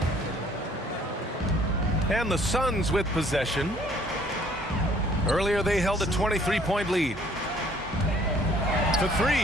And the Suns with possession. Earlier they held a 23-point lead. To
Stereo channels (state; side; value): normal; both; correlation 0.59